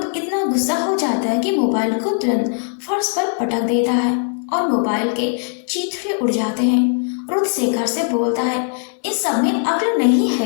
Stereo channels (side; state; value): right; silent; 57 dB below the other